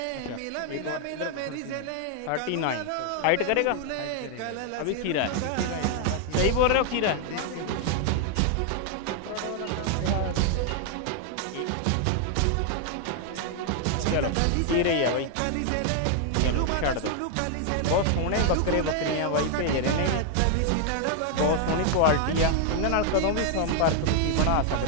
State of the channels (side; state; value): both; different; correlation 0.00